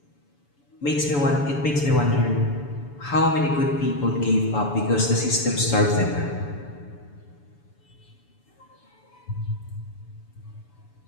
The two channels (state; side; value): late; right; 7.0 ms